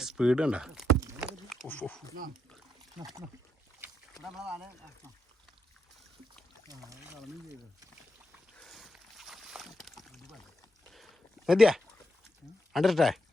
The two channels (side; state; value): both; normal; correlation 0.81